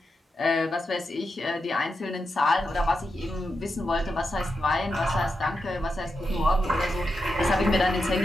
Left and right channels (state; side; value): normal; both; correlation 0.87